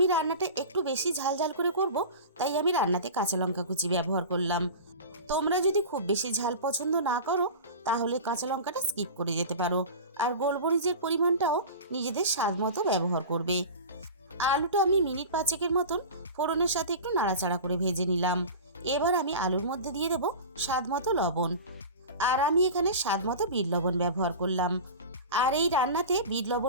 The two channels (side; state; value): both; inverted; correlation -0.32